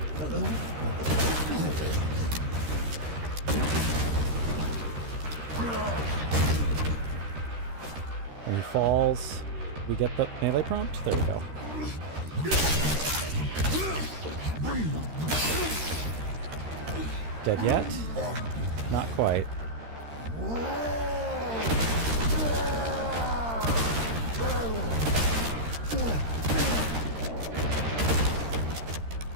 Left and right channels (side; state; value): left; late; 13 ms